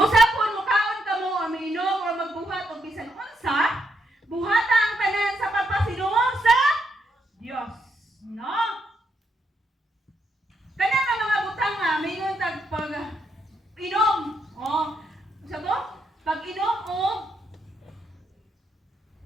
pun mukaon kamo aminom o magbuhat og bisan unsa, buhata ang tanan sa pagpasidungog sa Dios. No? Kana nga mga butang nga mingon tag pag inom. Oh, sa to? Pag inom og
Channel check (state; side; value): normal; both; correlation 0.79